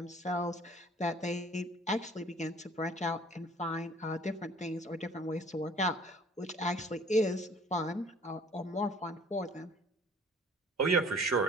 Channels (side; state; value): both; normal; correlation 0.53